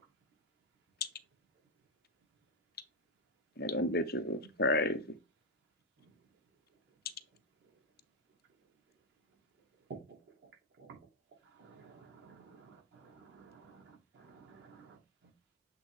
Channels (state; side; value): normal; both; correlation 0.02